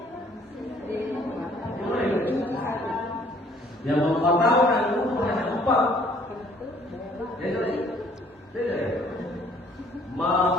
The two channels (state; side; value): normal; both; correlation 0.60